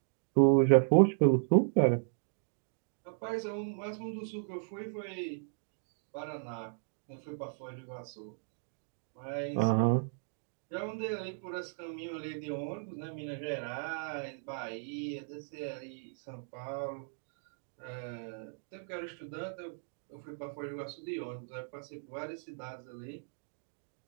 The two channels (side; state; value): left; silent; digital silence